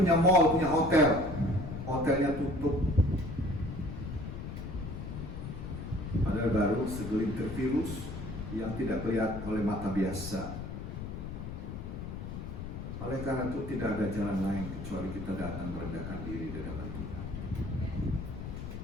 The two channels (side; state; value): left; noise; rumble, 7 dB below the sound